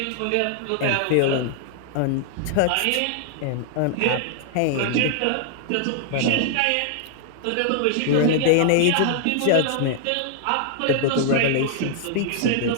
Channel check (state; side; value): different; both; correlation 0.00